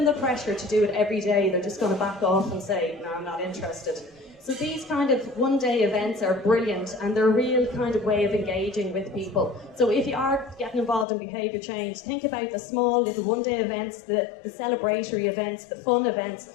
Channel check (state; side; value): drops out; right; at 11.1 s